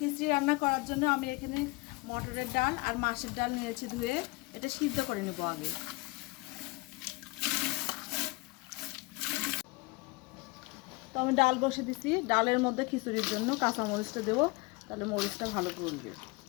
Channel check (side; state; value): right; quieter; 25.6 dB